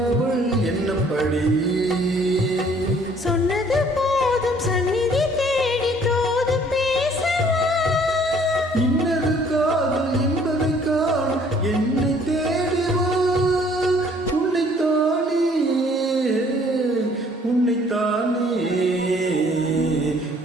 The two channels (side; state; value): both; normal; correlation 0.59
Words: அவள் என்னப்படி. சொன்னது போதும் சந்நிதி தேடி தோது பேசவா? இன்னது காதல் என்பதை காண என்னை தேடிவா. உன்னைத்தானே உன்னைத்தானே